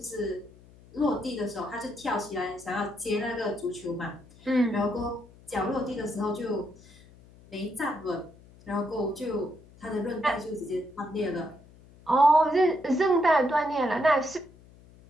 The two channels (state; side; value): noise; left; hum, 24 dB below the sound